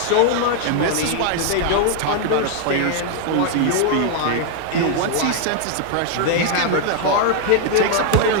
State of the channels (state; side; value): different; both; correlation 0.00